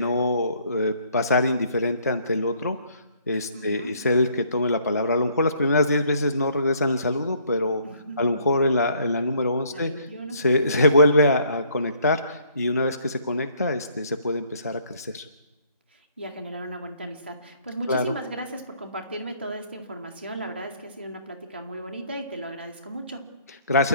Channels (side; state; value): both; inverted; correlation -0.64